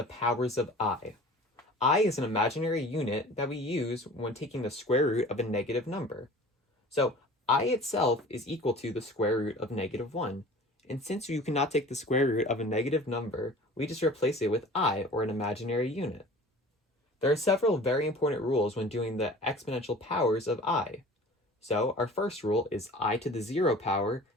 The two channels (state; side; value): normal; both; correlation 0.43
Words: powers of I. I is an imaginary unit that we use when taking the square root of a negative number. So I itself is equal to the square root of -1. And since you cannot take the square root of a negative number, we just replace it with I, or an imaginary unit. There are several very important rules when doing the exponential powers of I. So our first rule is I to the 0 power